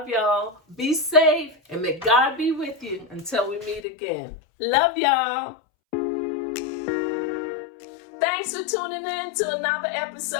y'all. Be safe and may God be with you until we meet again. Love y'all. Thanks for tuning in to another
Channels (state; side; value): drops out; right; at 3.9 s